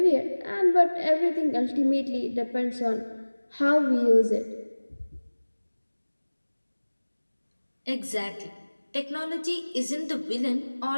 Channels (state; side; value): inverted; both; correlation -1.00